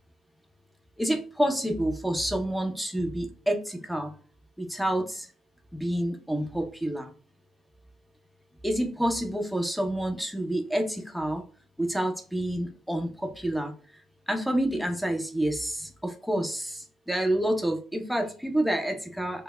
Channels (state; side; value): normal; both; correlation 0.94